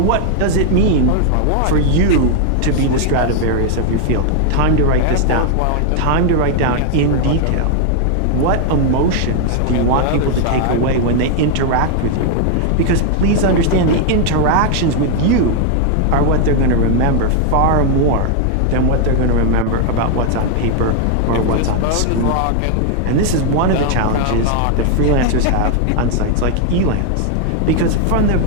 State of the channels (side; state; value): both; different; correlation 0.00